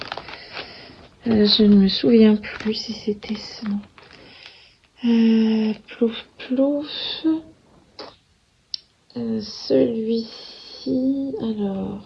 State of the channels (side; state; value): both; identical; correlation 1.00